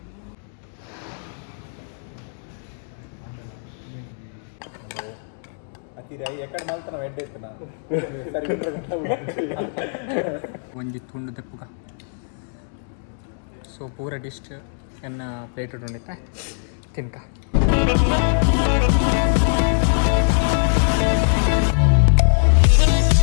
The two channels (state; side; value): silent; right; 64 dB below the other